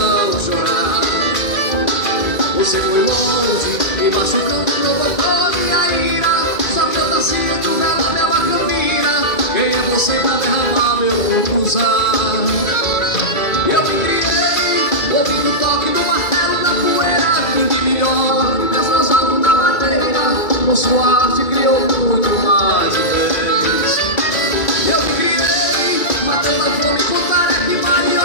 chorar. Você foi longe, me machucando, provocou minha ira. Só que eu nasci entre o verão e a macambira. Quem é você pra derramar meu usar? Eu me criei, ouvindo o toque do martelo na poeira. Quem de melhor, desfrosado na madeira. Com sua arte criou muito mais vezes. Eu me criei, matando a fome com tarefa e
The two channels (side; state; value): right; late; 2.2 ms